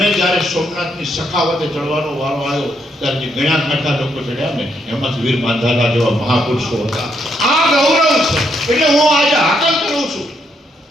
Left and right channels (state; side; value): normal; both; correlation 0.76